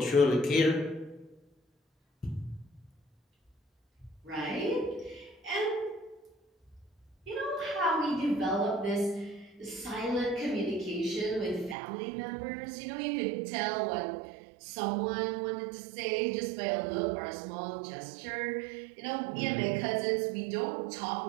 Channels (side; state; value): left; drops out; at 11.8 s